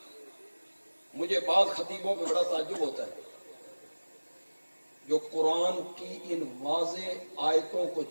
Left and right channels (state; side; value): inverted; both; correlation -1.00